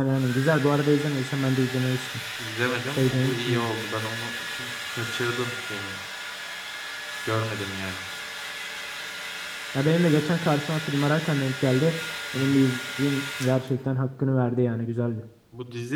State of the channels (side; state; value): both; identical; correlation 1.00